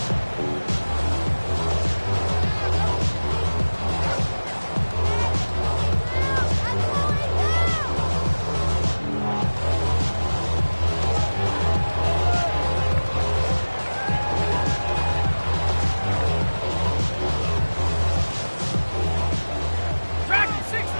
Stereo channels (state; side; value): inverted; both; correlation -1.00